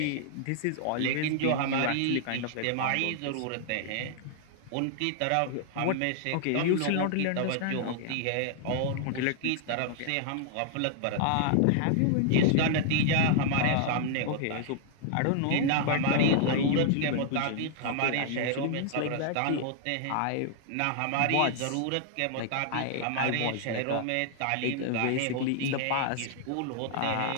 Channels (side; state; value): both; different; correlation -0.01